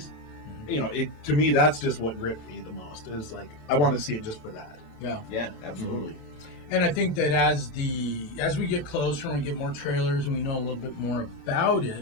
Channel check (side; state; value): right; late; 27 ms